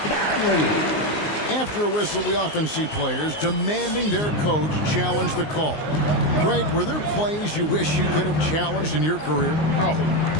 After a whistle, we often see players demanding their coach challenge the call. Greg, were there plays you wish you could have challenged in your career? Oh, my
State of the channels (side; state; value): right; late; 19 ms